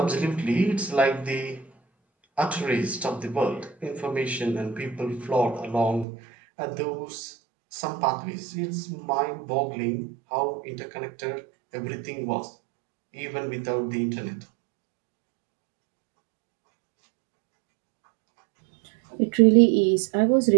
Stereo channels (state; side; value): drops out; left; at 6.1 s